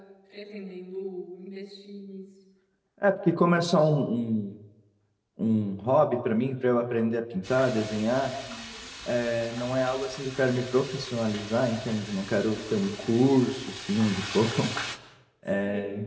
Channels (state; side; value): identical; both; correlation 1.00